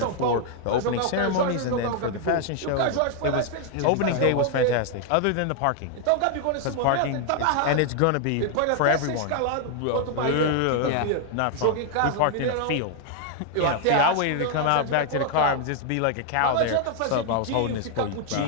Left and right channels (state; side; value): different; both; correlation 0.00